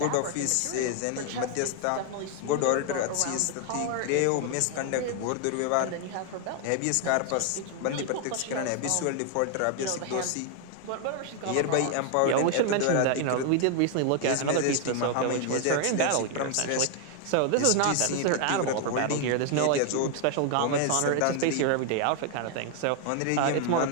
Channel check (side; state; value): both; different; correlation 0.00